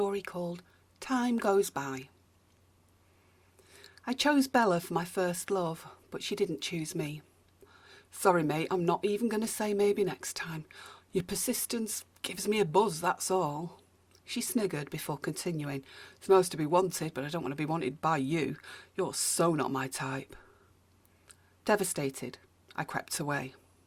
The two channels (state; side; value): identical; both; correlation 1.00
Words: called Time Goes By. I chose Bella for my first love, but she didn't choose me. Sorry mate, I'm not even going to say maybe next time. Your persistence gives me a buzz, that's all. She sniggered before continuing. It's most to be wanted, but I don't want to be wanted by you. You're so not my type. Devastated, I crept away.